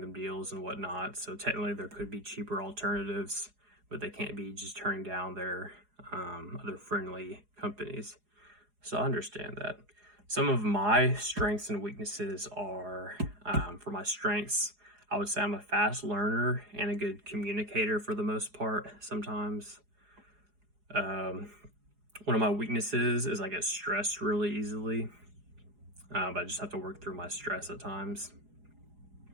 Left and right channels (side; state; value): left; late; 4.8 ms